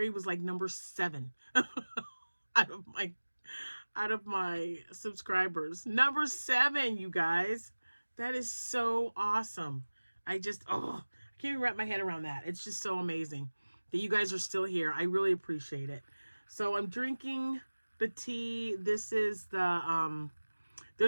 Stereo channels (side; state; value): both; inverted; correlation -1.00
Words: was like number 7 out of my subscribers. Number 7, you guys. That is so awesome. I can't even wrap my head around that. It's just so amazing that you guys are still here. I really appreciate it. So I'm drinking the tea. This is the,